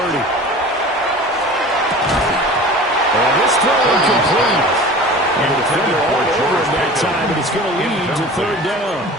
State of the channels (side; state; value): both; normal; correlation 0.39